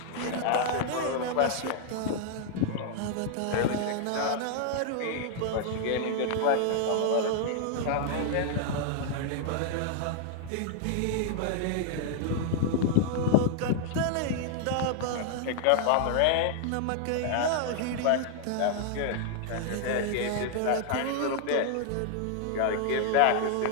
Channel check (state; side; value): different; both; correlation 0.00